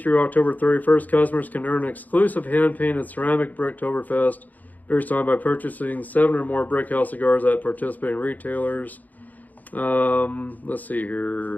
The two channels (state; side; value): late; right; 0.081 ms